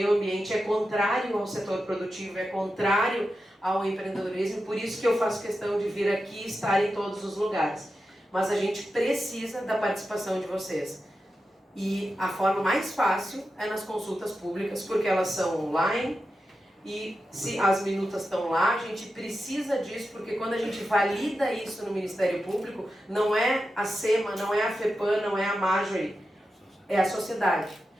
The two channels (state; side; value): normal; both; correlation 0.90